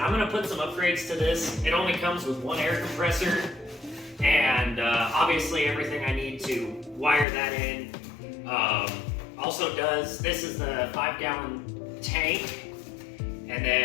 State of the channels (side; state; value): right; drops out; at 7.2 s